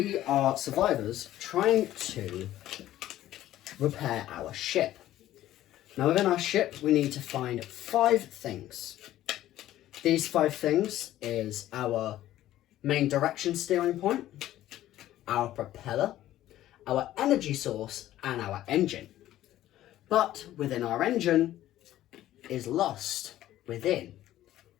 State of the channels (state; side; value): quieter; right; 13.7 dB